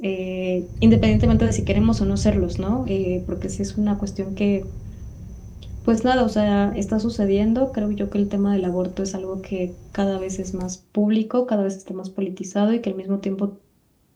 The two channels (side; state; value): both; identical; correlation 1.00